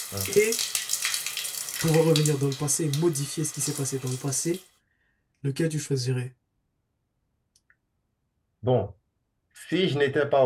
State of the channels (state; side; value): identical; both; correlation 1.00